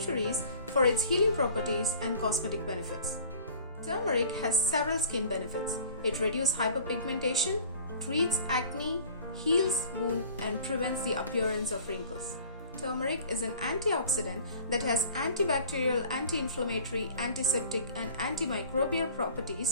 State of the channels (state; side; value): inverted; both; correlation -0.46